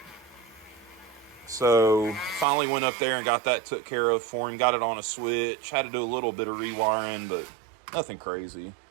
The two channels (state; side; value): drops out; left; at 2.5 s